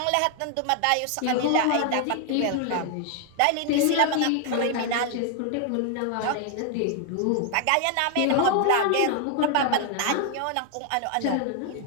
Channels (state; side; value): different; both; correlation 0.00